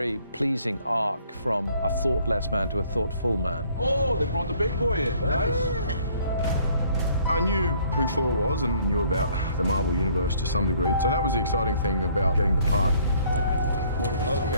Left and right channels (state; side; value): inverted; both; correlation -0.61